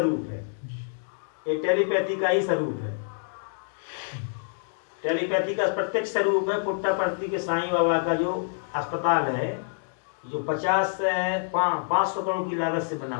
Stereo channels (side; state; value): right; silent; digital silence